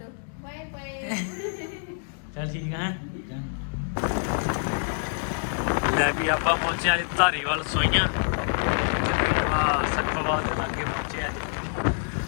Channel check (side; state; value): right; silent; digital silence